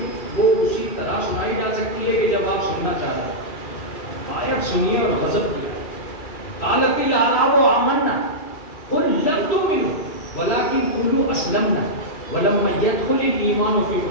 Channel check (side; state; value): right; late; 3.0 ms